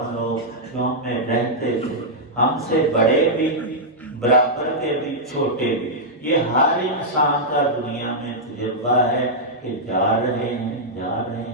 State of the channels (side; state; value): both; normal; correlation -0.08